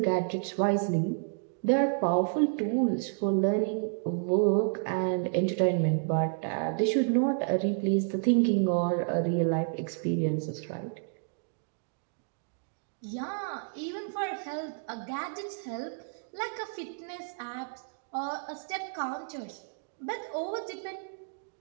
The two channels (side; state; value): left; silent; digital silence